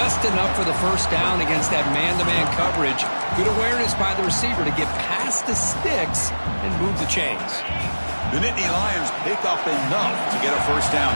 enough for the first down against that man-to-man coverage. Good awareness by the receiver to get past the sticks and move the chains. The Nittany Lions pick up enough to get a first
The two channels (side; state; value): both; inverted; correlation -1.00